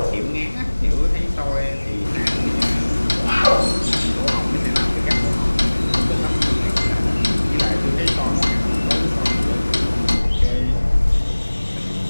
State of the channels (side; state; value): both; inverted; correlation -1.00